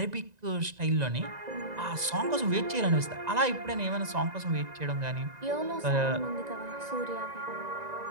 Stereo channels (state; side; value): late; left; 1.9 ms